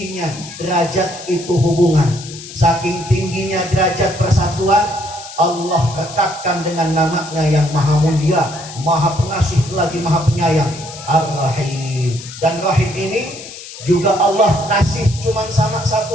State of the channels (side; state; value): left; noise; hiss, 14 dB below the sound